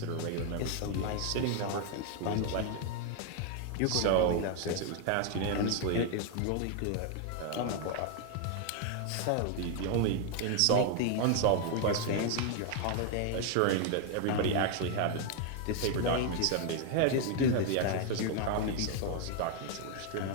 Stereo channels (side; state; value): both; different; correlation 0.00